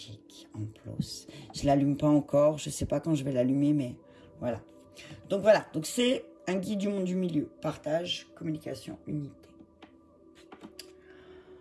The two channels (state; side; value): identical; both; correlation 1.00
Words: en plus. Je l'allume pas encore, je sais pas quand je vais l'allumer, mais voilà. Donc voilà, donc c'est un guide du monde du milieu. Partage, communication, unité.